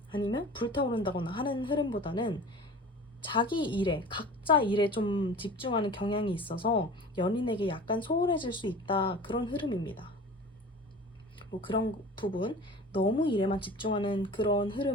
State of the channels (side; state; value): both; normal; correlation 0.39